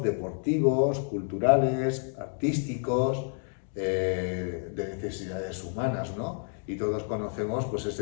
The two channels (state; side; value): silent; right; 58 dB below the other